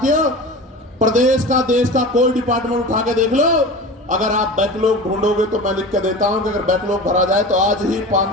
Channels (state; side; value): normal; both; correlation 0.33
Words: प्रदेश का, देश का कोई डिपार्टमेंट उठा के देख लो, अगर आप बैकलॉग ढूंढोगे तो मैं लिख के देता हूं कि अगर बैकलॉग भरा जाए तो आज ही